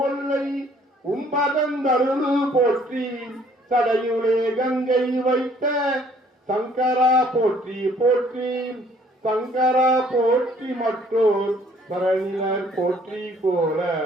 ஒல்லை உம்பதந்தருளு போற்றி சடையுளே கங்கை வைத்த சங்கரா போற்றி போற்றி சங்கரா போற்றி மற்றோர் பரணியர் போற்றி போல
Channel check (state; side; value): normal; both; correlation 0.60